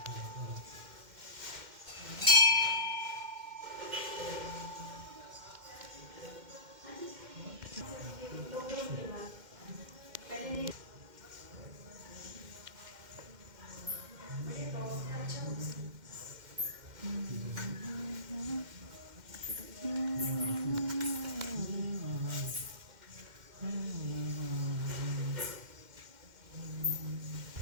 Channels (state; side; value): late; left; 2.1 ms